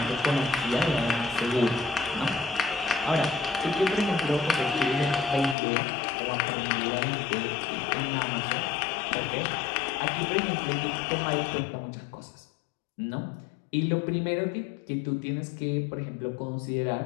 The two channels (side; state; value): right; drops out; at 5.6 s